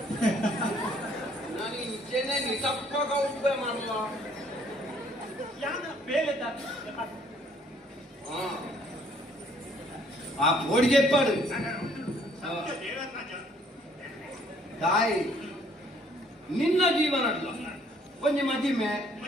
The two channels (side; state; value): both; normal; correlation 0.62